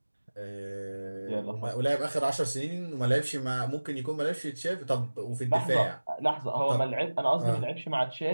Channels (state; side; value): inverted; both; correlation -1.00